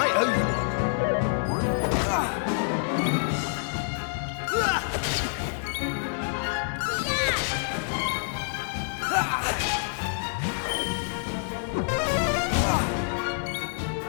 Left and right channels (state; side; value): silent; right; digital silence